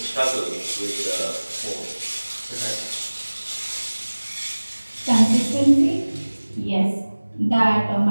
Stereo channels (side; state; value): both; inverted; correlation -1.00